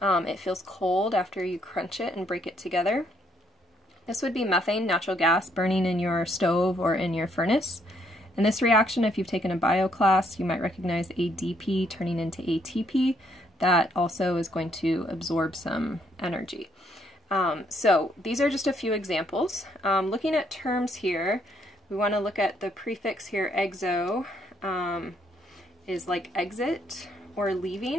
It feels cold after you crunch it and break it together. This would be methane, natural gas, burning in your stove or in your furnace. And this reaction, if you've taken a bio class, you might recognize ADP turning into ATP. That also is going to absorb some energy. So these are just a few examples. Looking at terms here, we want to look at the prefix here, exo, is like exit or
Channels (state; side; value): normal; both; correlation 0.71